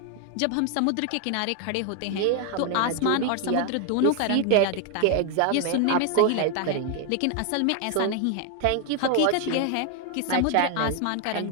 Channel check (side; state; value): both; different; correlation 0.00